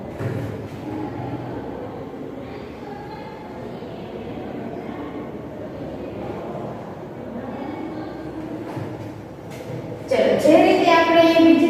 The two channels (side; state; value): both; identical; correlation 1.00